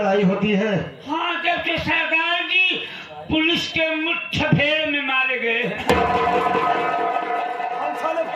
होती है। हाँ, जब से सरदार जी पुलिस के मुठभेड़ में मारे गए हैं।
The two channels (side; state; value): both; identical; correlation 1.00